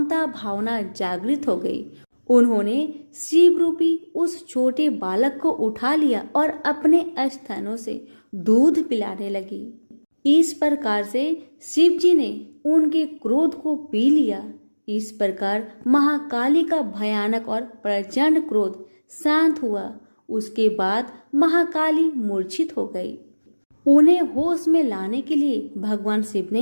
भावना जागृत हो गई। उन्होंने शिव रूपी उस छोटे बालक को उठा लिया और अपने स्तनों से दूध पिलाने लगी। इस प्रकार से शिव जी ने उनके क्रोध को पी लिया। इस प्रकार महाकाली का भयानक और प्रचंड क्रोध शांत हुआ। उसके बाद महाकाली मूर्छित हो गई। उन्हें होश में लाने के लिए भगवान शिव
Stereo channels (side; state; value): both; inverted; correlation -1.00